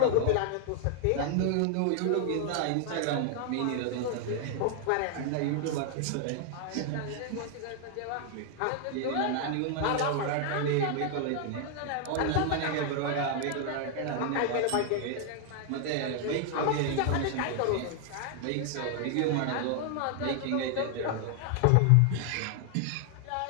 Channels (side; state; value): both; different; correlation 0.00